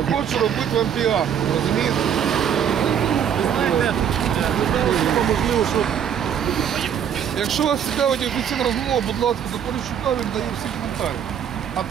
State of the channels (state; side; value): quieter; left; 8.6 dB